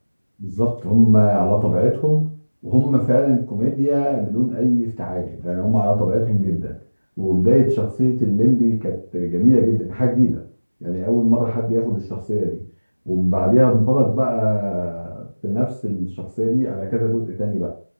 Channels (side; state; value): both; inverted; correlation -1.00